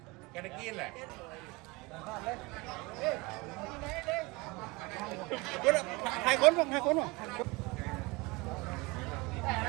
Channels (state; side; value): quieter; left; 25.0 dB